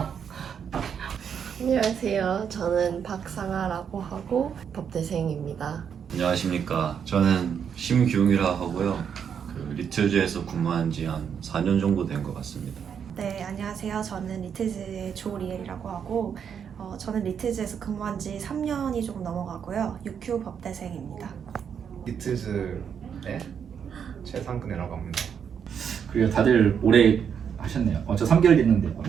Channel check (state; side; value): quieter; left; 7.6 dB